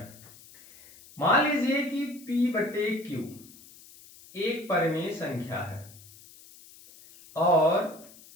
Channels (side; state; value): left; noise; hiss, 22 dB below the sound